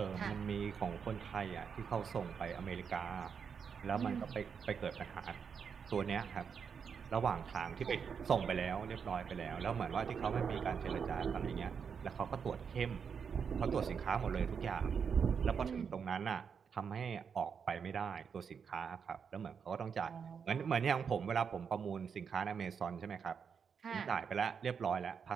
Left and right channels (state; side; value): quieter; left; 6.6 dB